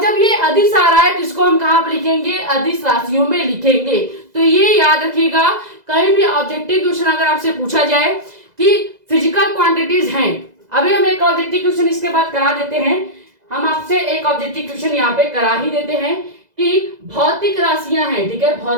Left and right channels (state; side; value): late; left; 2.0 ms